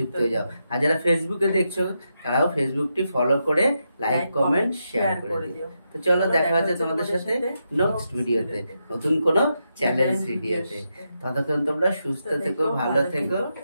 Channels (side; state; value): both; inverted; correlation -0.85